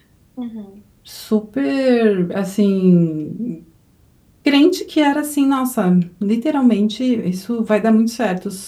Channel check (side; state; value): both; identical; correlation 1.00